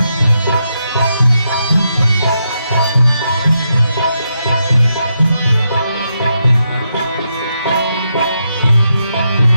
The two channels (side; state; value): both; inverted; correlation -0.82